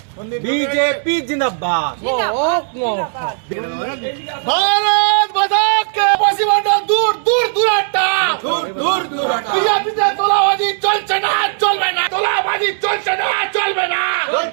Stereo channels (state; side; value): silent; left; digital silence